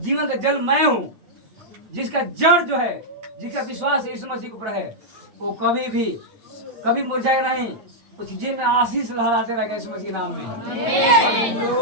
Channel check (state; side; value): late; left; 9.3 ms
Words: का जल मैं हूँ, जिसका जड़ जो है, जिसका विश्वास यीशु मसीह के ऊपर है, वो कभी मुरझाए नहीं। उस जी में आशीष लहराते रहेगा यीशु मसीह के नाम में।